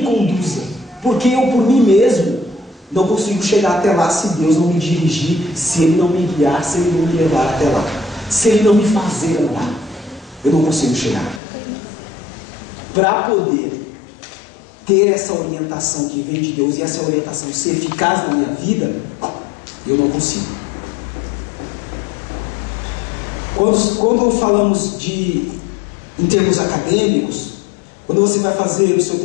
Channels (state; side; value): drops out; right; at 11.4 s